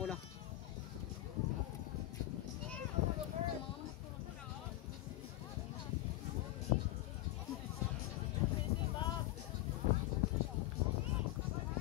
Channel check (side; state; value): right; quieter; 16.8 dB